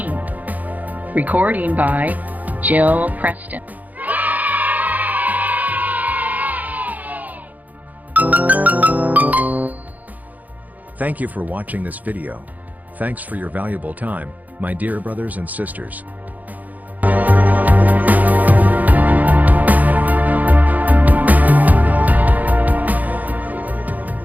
Recording by Jill Preston. Thank you for watching this video. Thanks for your valuable time, my dear brothers and sisters.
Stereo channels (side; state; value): left; late; 0.079 ms